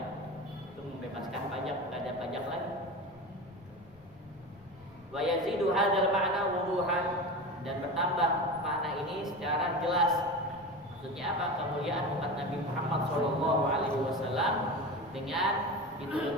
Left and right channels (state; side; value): noise; left; rumble, 26 dB below the sound